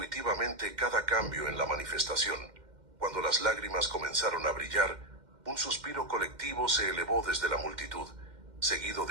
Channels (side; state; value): left; late; 2.1 ms